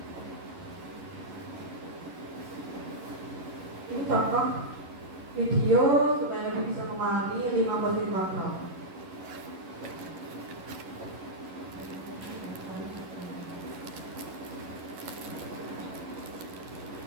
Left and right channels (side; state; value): left; late; 11 ms